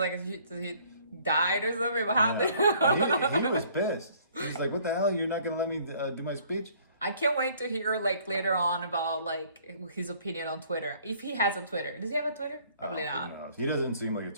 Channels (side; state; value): both; inverted; correlation -0.58